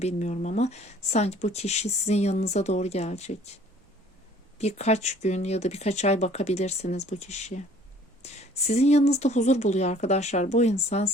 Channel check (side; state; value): both; normal; correlation 0.54